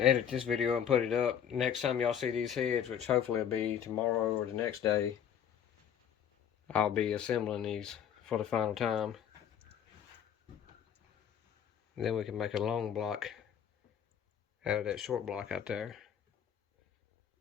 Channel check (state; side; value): quieter; right; 8.7 dB